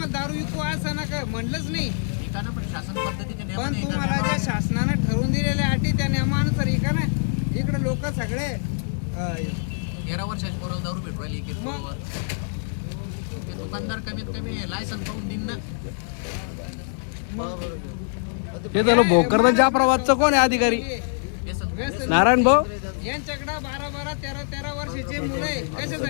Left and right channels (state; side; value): silent; right; 62 dB below the other